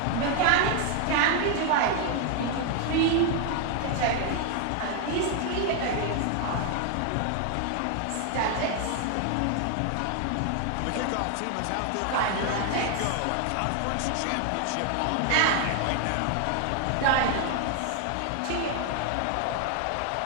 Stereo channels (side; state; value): both; different; correlation 0.00